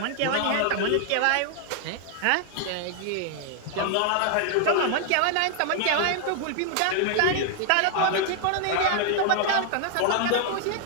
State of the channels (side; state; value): both; different; correlation 0.00